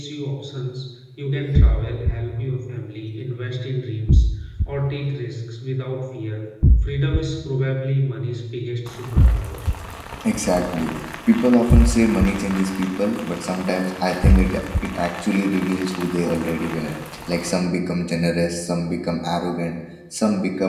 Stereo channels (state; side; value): identical; both; correlation 1.00